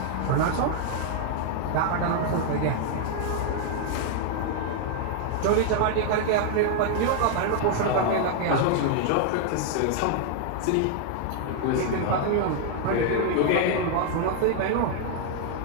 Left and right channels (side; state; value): both; different; correlation 0.00